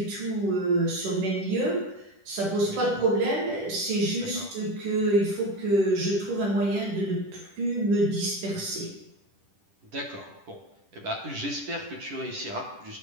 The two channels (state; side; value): late; left; 10 ms